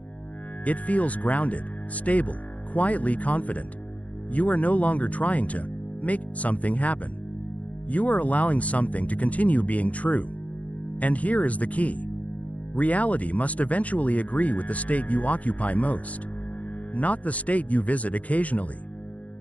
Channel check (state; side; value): late; right; 0.069 ms